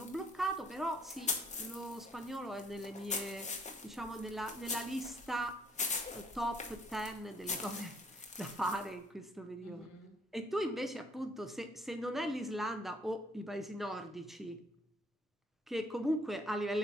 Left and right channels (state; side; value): normal; both; correlation 0.63